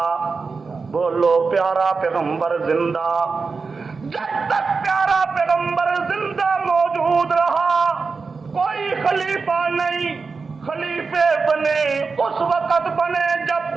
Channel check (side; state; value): left; quieter; 4.6 dB